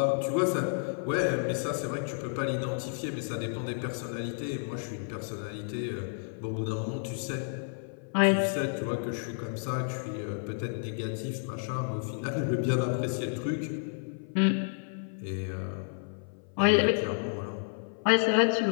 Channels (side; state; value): right; silent; 57 dB below the other